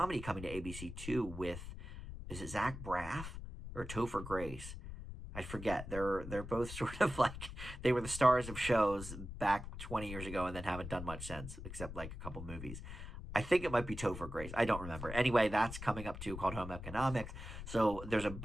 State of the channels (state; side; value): noise; left; rumble, 9 dB below the sound